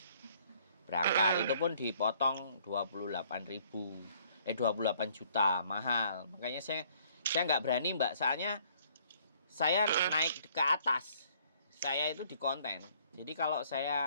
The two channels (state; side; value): inverted; both; correlation -0.62